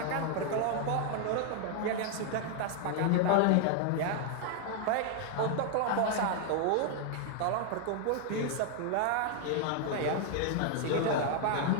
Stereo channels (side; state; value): both; different; correlation 0.00